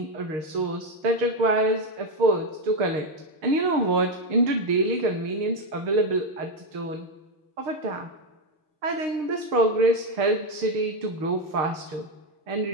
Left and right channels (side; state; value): left; late; 6.5 ms